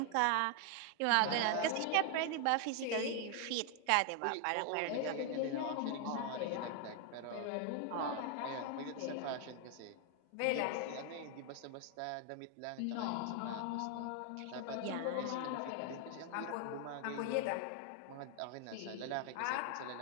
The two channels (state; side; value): different; both; correlation 0.00